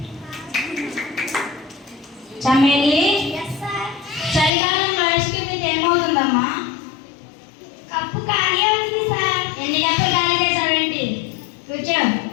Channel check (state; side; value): drops out; right; at 4.5 s